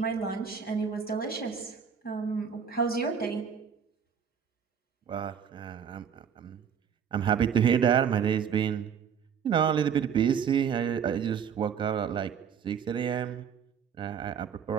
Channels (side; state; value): left; quieter; 7.4 dB